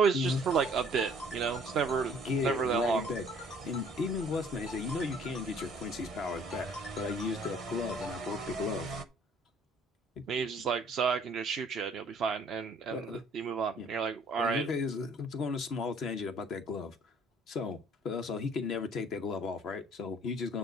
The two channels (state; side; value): normal; both; correlation 0.57